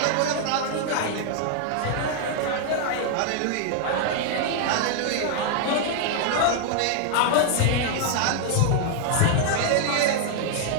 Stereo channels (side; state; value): both; different; correlation 0.00